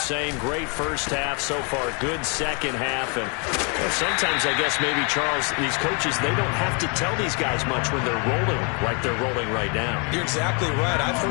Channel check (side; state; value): right; quieter; 35.3 dB